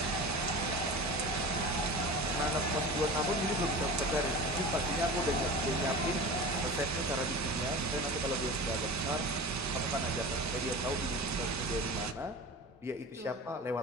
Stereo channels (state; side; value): normal; both; correlation 0.33